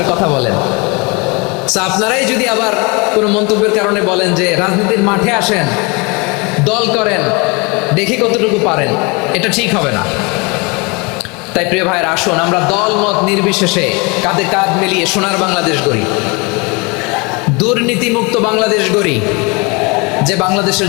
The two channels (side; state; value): right; quieter; 28.8 dB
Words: কথা বলেন। আপনারাই যদি আবার কোনো মন্তব্যের কারণে বলেন যে রাজনীতির মাঠে আসেন, দল করেন, দেখি কতটুকু পারেন, এটা ঠিক হবে না। তাই প্রিয় ভাইয়ের, আসুন আমরা দল মত নির্বিশেষে কাঁধে কাঁধ মিলিয়ে সোনার বাংলাদেশ গড়ি, দুর্নীতিমুক্ত বাংলাদেশ গড়ি। যে বাংলাদেশের